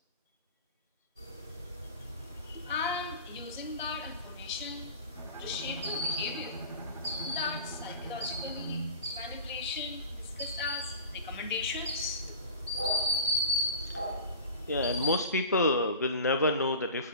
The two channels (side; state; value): both; inverted; correlation -0.38